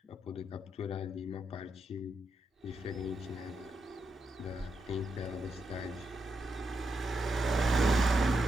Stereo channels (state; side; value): normal; both; correlation 0.83